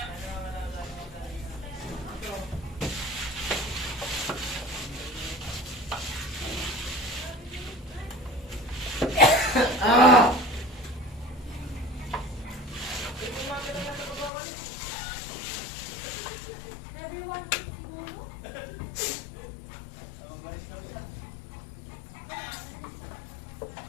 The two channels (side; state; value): right; drops out; at 14.3 s